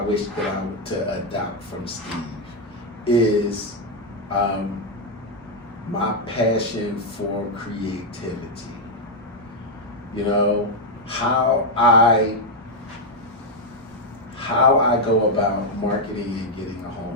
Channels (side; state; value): both; normal; correlation 0.01